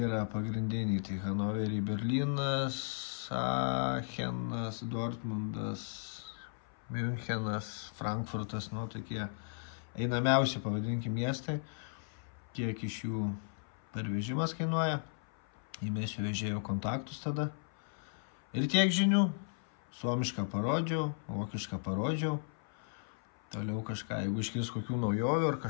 pagrindiniai. Tai Hanoverį, Berlynas, Aachenas, Dortmundas, Münchenas, Frankfurtas, tokie einamiausi, pavadinkim, miestai. Kiek iš jų pervežimas kainuoja. Įmėsiu vežėjo kontaktus tada. Ir tiek žinių. Suomišką parodžiau, vokišką parodžiau. Toliau kažką, jeigu iškils kokių naujovių ar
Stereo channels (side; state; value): right; silent; 54 dB below the other